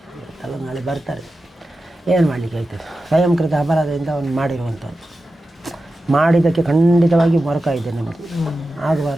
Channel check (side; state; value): both; normal; correlation 0.93